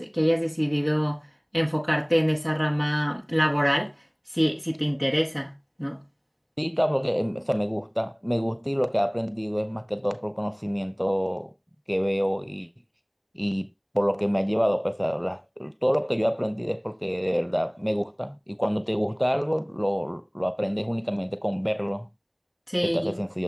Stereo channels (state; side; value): identical; both; correlation 1.00